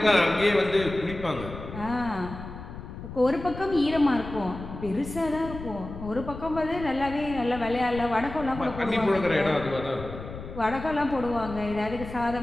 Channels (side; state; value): left; noise; rumble, 11 dB below the sound